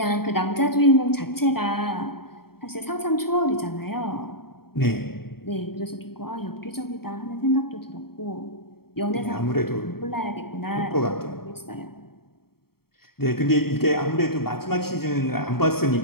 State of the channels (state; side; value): late; right; 0.95 ms